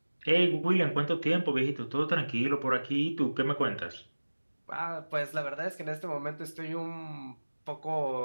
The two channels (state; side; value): inverted; both; correlation -1.00